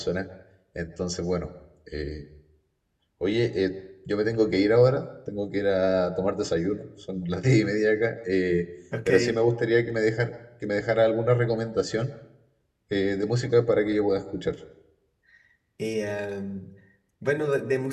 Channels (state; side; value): identical; both; correlation 1.00